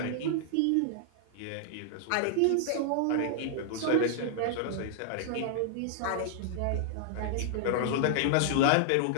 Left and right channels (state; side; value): different; both; correlation -0.01